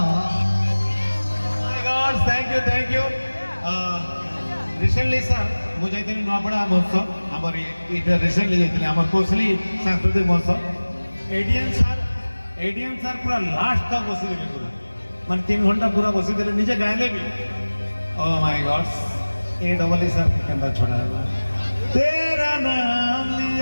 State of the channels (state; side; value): inverted; both; correlation -1.00